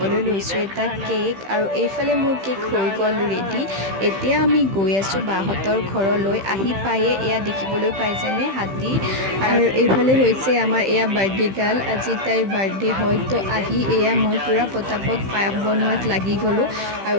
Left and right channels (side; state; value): left; late; 15 ms